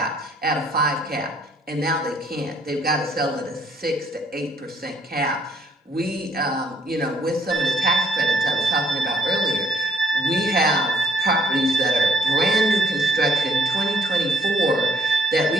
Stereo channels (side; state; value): both; normal; correlation 0.66